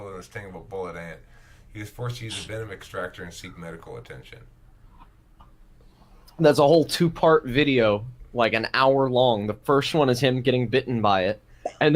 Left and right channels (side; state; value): both; identical; correlation 1.00